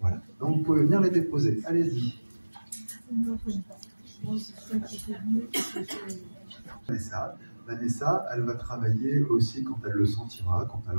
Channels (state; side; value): inverted; both; correlation -1.00